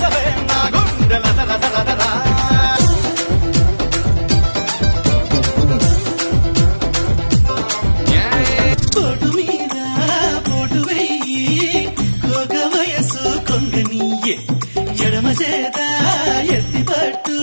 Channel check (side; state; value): both; inverted; correlation -1.00